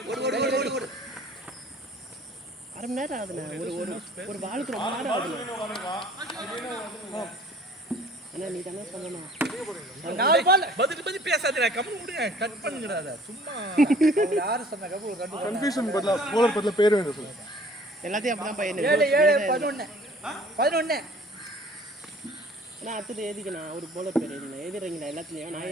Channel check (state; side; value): normal; both; correlation 0.52